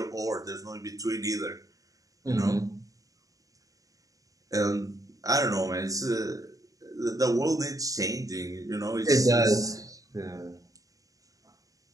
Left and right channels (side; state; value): left; late; 0.17 ms